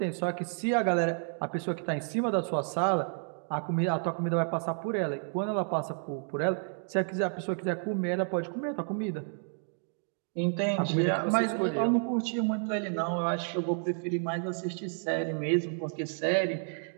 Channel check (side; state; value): left; silent; 56 dB below the other